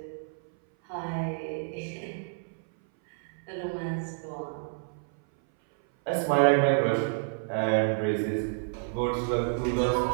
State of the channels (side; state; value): left; silent; 58 dB below the other